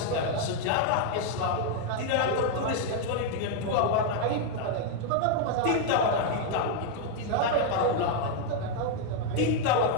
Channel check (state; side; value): different; both; correlation 0.00